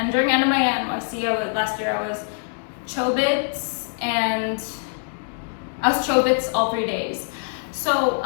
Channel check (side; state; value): right; silent; digital silence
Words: during Anime NYC, last year I was Chobits, and I was Chobits all 3 days. So,